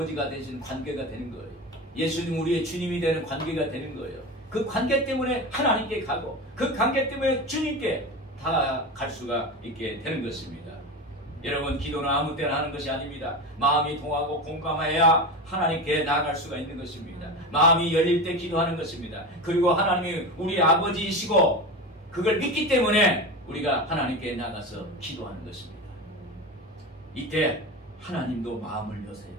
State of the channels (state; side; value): normal; both; correlation 0.25